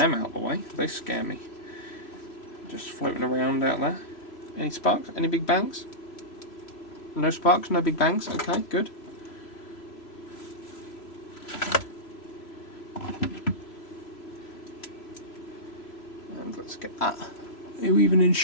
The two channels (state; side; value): late; right; 3.0 ms